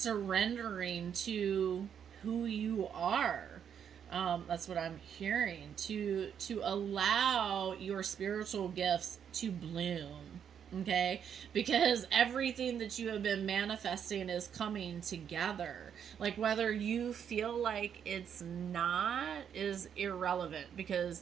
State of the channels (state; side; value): quieter; left; 8.2 dB